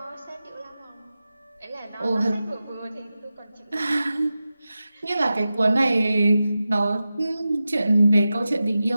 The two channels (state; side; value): inverted; both; correlation -0.93